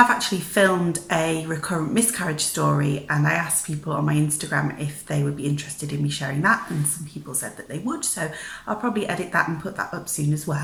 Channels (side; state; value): both; identical; correlation 1.00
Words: actually filmed a recurrent miscarriage story, and I asked people on my Instagram if they would be interested in me sharing that, and some people said that they would, so I'll probably edit that and put that up soon as